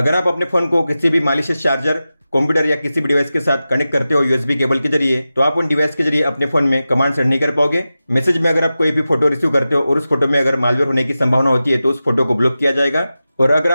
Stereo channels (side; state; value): both; inverted; correlation -0.94